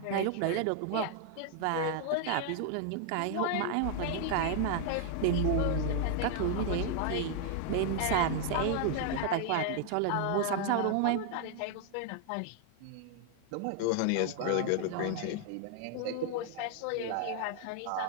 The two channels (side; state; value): both; different; correlation 0.00